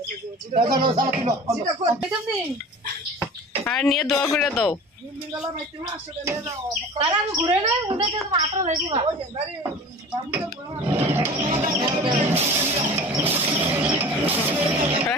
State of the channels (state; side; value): normal; both; correlation 0.39